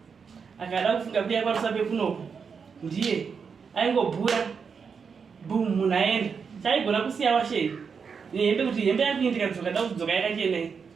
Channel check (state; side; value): quieter; left; 5.9 dB